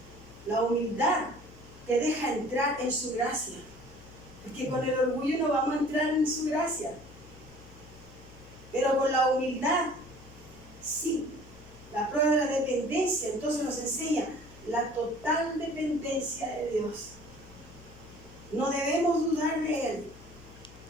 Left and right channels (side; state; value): left; noise; hum, 20 dB below the sound